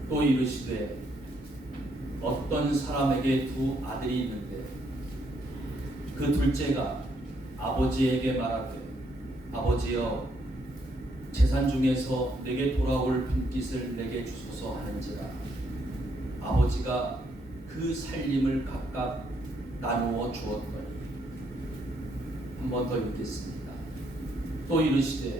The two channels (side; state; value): both; normal; correlation 0.73